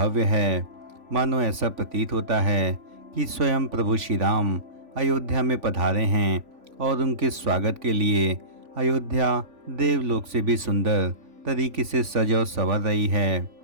है। मानो ऐसा प्रतीत होता है कि स्वयं प्रभु श्री राम अयोध्या में पधारे हैं और उनके स्वागत के लिए अयोध्या देवलोक से भी सुंदर तरीके से सज और संवर रही है।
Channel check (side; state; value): left; late; 3.5 ms